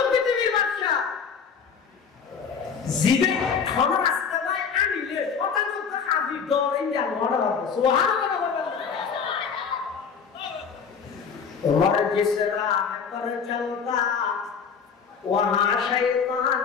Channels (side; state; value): right; quieter; 6.3 dB